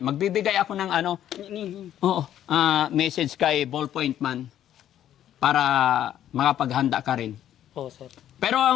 Magbibigay ako ng message kay Ballpoint Man para makapaghanda ka rin. Oo sir. Pero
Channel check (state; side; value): quieter; right; 11.2 dB